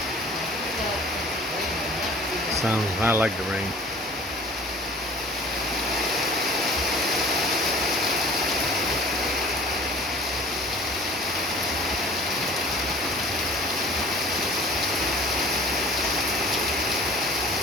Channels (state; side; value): normal; both; correlation 0.47